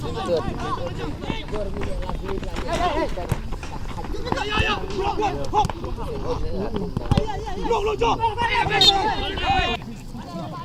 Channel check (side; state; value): both; identical; correlation 1.00